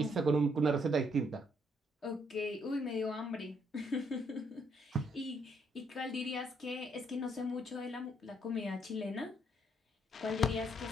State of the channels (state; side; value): normal; both; correlation 0.71